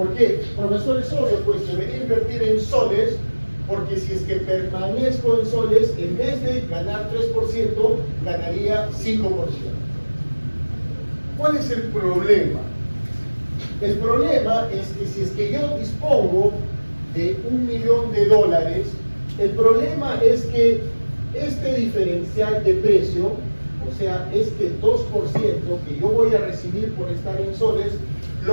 qué? Profesor, es obvio, pues debería invertir en soles, porque si es que permanezco en soles, en vez de ganar 3%, ganaría 5%. ¿Cuál es el problema? El problema es que si es que yo dispongo de $1 millón, el problema es que este diferencial de precio, o sea, este 2% que yo voy a recibir por estar en soles,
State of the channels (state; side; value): inverted; both; correlation -1.00